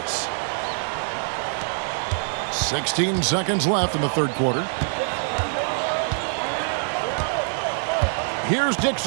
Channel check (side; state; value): left; silent; digital silence